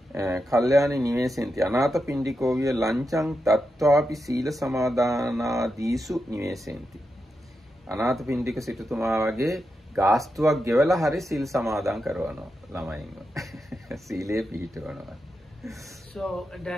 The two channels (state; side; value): normal; both; correlation 0.87